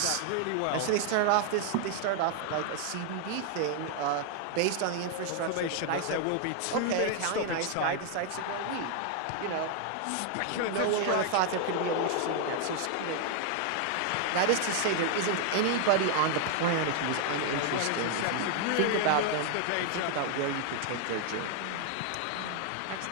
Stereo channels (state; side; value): different; both; correlation 0.00